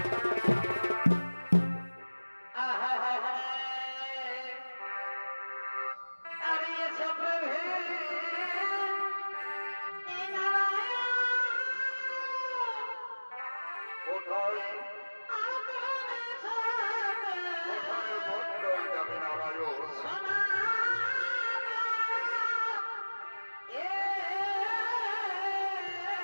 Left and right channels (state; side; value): inverted; both; correlation -1.00